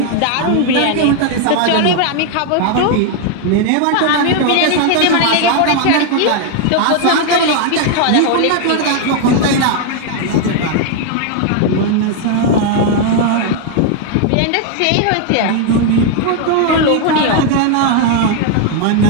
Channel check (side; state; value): both; different; correlation 0.00